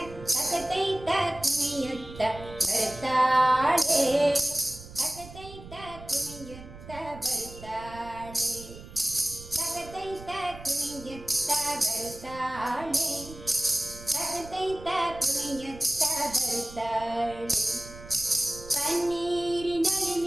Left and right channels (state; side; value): noise; right; rumble, 16 dB below the sound